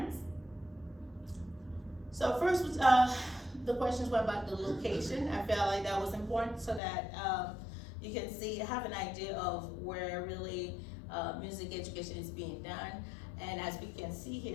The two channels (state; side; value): drops out; right; at 6.8 s